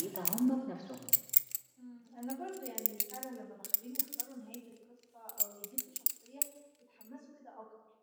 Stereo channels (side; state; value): both; identical; correlation 1.00